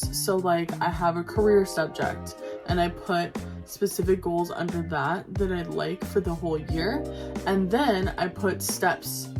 So like I have a career subject and I put specific goals under that I'd like for the whole year, and then I put steps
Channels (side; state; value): both; identical; correlation 1.00